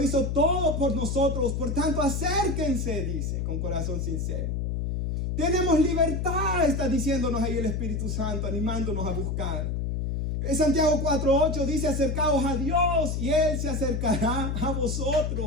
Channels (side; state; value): left; noise; hum, 1 dB below the sound